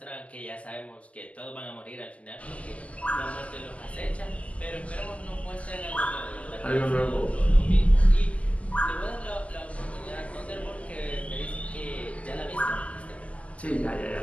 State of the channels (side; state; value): right; late; 0.064 ms